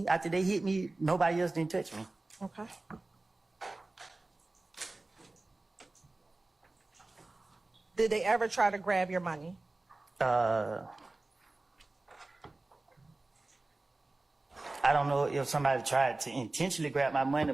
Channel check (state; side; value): quieter; left; 3.0 dB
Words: after they hit me, nobody else didn't touch me. Okay. Did they ever try to grab your money? I don't know if somebody tried to intentionally grab my money,